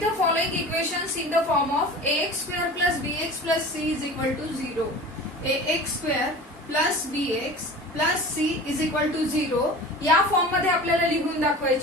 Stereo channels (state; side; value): normal; both; correlation 0.37